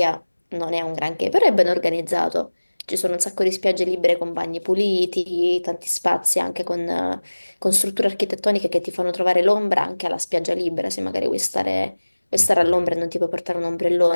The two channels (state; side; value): inverted; both; correlation -1.00